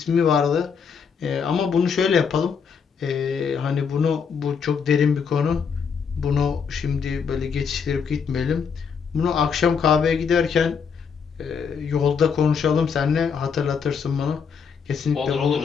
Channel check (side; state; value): right; quieter; 6.3 dB